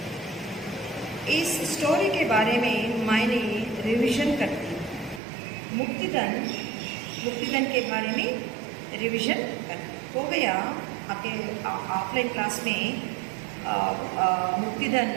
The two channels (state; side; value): drops out; left; at 5.2 s